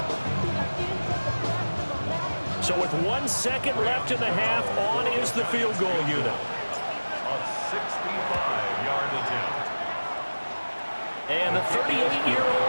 So with 1 second left in the half, on is the field goal unit. A 65-yard attempt. And the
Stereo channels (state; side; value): inverted; both; correlation -1.00